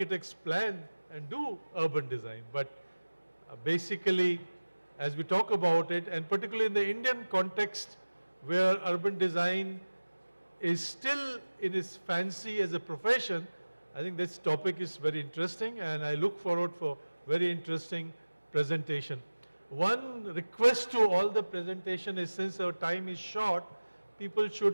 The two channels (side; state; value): both; inverted; correlation -1.00